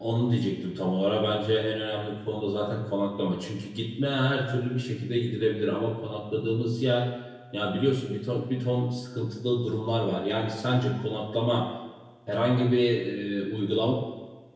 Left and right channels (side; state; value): both; identical; correlation 1.00